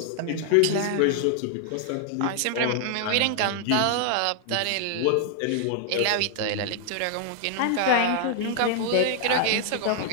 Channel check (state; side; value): different; both; correlation -0.01